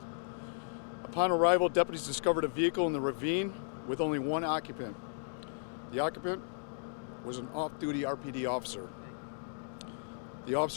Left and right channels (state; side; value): silent; right; digital silence